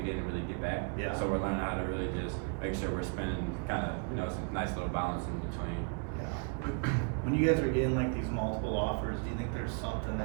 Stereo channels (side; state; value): left; quieter; 38.5 dB